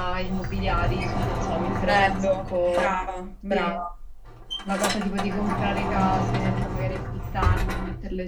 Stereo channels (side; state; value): both; identical; correlation 1.00